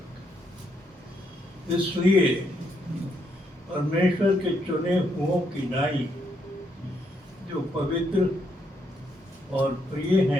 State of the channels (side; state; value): both; normal; correlation 0.76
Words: इसलिए परमेश्वर के चुने हुओं की नाई, जो पवित्र और प्रिय